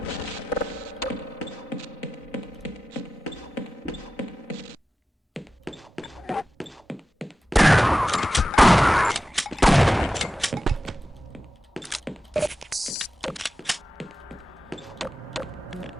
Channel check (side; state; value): both; normal; correlation 0.94